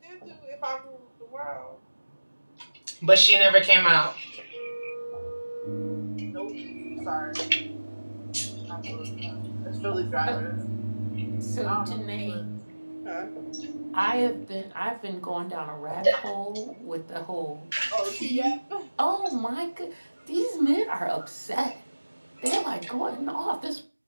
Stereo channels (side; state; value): both; inverted; correlation -1.00